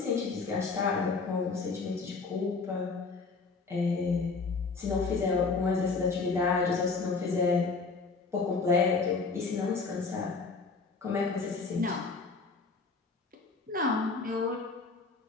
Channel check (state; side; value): quieter; right; 4.3 dB